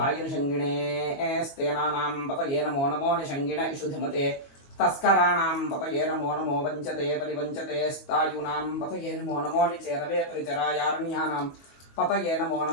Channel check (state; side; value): late; right; 22 ms